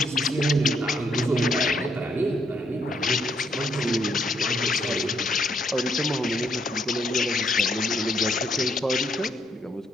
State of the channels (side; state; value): both; normal; correlation 0.73